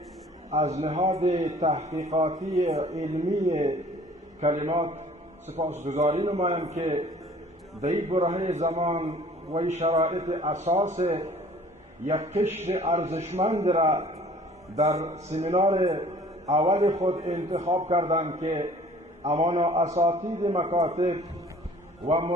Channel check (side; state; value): both; normal; correlation 0.51